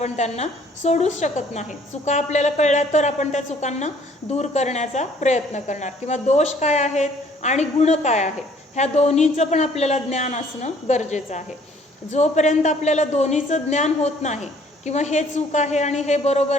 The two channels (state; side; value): normal; both; correlation 0.59